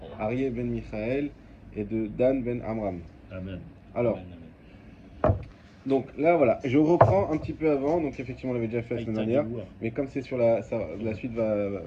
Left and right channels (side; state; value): both; identical; correlation 1.00